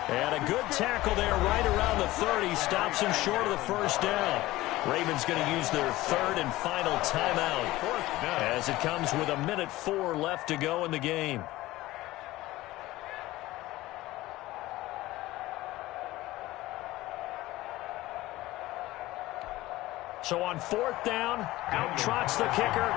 And a good tackle there right around the 30. Stops him short of the first down. Ravens going to use their 3rd and final timeout as it comes with 1:04 left to go in the game. So on 4th down, out trots the kicker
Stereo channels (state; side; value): quieter; right; 17.7 dB